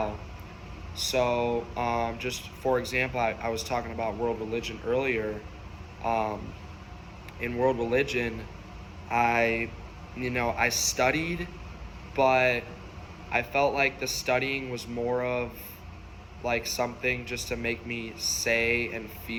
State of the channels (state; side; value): identical; both; correlation 1.00